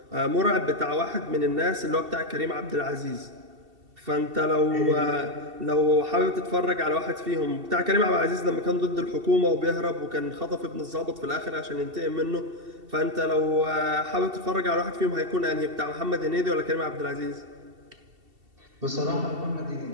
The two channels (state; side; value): late; left; 2.7 ms